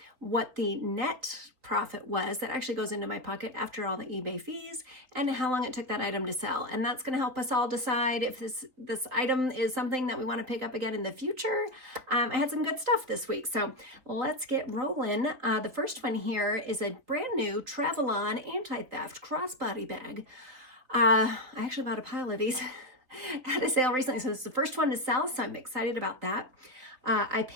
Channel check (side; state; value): left; late; 3.9 ms